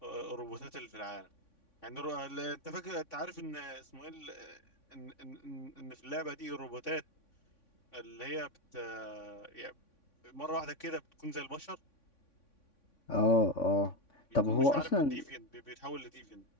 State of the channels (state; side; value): late; right; 3.5 ms